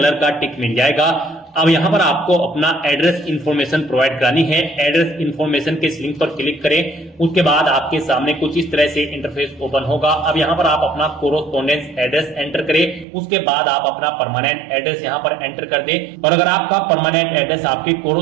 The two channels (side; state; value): left; drops out; at 13.1 s